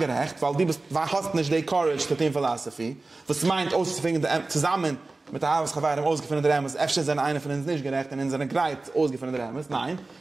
weil hast nicht die Courage zu den Philosophie, was meint, auszufinden, zusammen mit der Arbeitsgewehr ausgefunden der Emes, öfter sind einer von uns nicht gerecht und in seiner Greit ausgefunden der Emes. Nein,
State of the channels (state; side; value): quieter; left; 3.3 dB